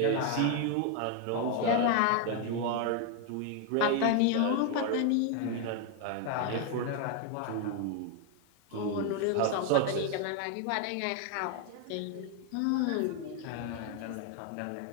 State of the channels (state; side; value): different; both; correlation 0.01